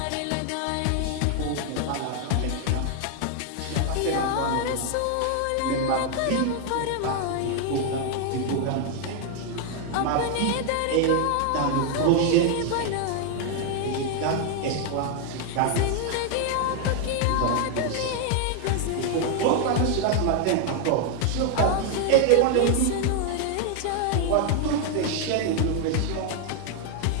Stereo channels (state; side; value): different; both; correlation 0.00